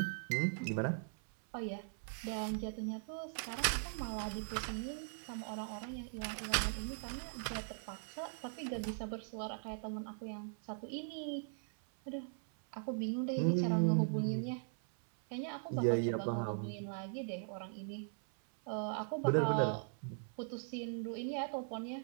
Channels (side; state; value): left; silent; 51 dB below the other